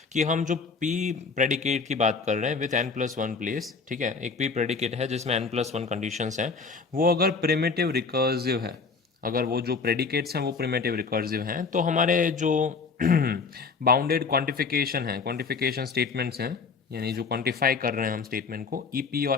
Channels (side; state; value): right; quieter; 4.8 dB